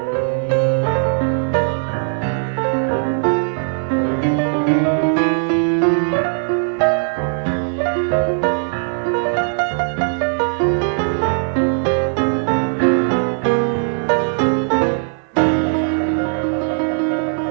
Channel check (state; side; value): silent; left; 66 dB below the other